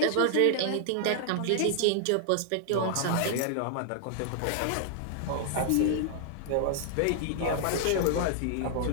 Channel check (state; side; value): different; both; correlation -0.01